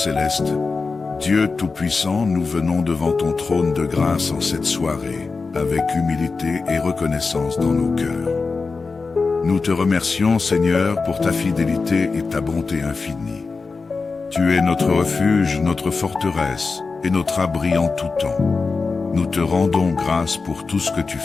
Dieu Tout-Puissant, nous venons devant ton trône de grâce en cette soirée, avec humilité et reconnaissance dans nos cœurs. Nous te remercions, Seigneur, pour ta fidélité et ta bonté infinie. Tu es notre refuge, notre forteresse et notre abri en tout temps. Nous te rendons grâce pour tout ce que tu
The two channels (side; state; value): right; quieter; 4.3 dB